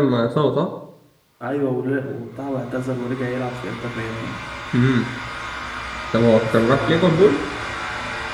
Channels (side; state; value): both; identical; correlation 1.00